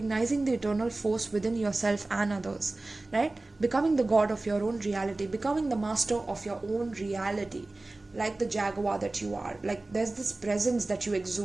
the eternal force within yourself and others, right? Becoming the god of your own reality, becoming the master of your own reality, like the Jaguar that you are. Like there's this presence that you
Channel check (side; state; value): left; quieter; 3.0 dB